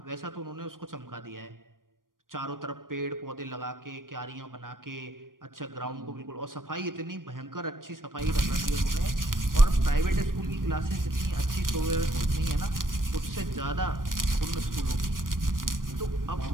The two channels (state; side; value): late; left; 0.90 ms